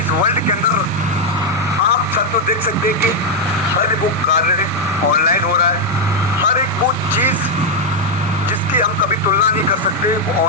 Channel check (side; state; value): both; normal; correlation 0.00